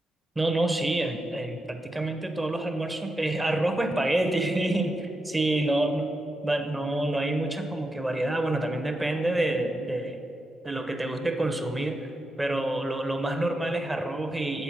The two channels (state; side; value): normal; both; correlation 0.87